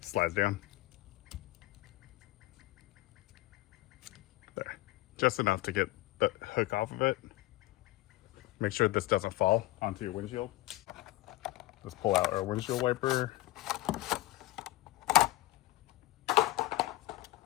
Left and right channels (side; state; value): right; quieter; 18.1 dB